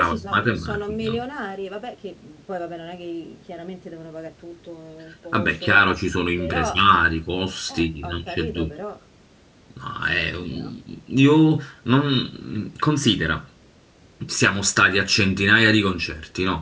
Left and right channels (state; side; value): identical; both; correlation 1.00